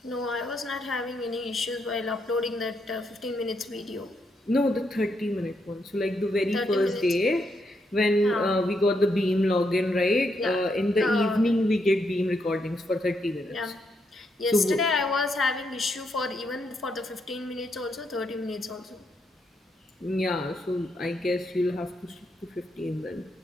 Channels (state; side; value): normal; both; correlation 0.79